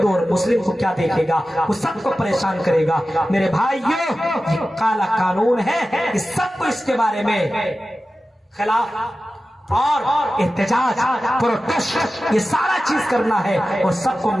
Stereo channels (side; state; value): both; normal; correlation 0.94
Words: اور مسلم کو کیا دیکھے گا؟ وہ سب کو پریشان کرے گا۔ میرے بھائیوں یہ کالا قانون ہے، اس سب کو اس کے بارے میں خلاف اور احتجاج پروٹیسٹ یہ سارا چیز کرنا ہے اور سب کو